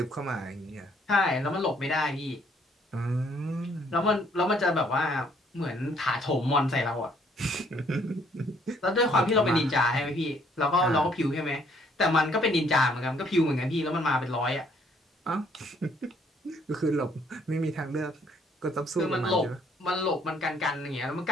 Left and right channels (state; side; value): normal; both; correlation 0.65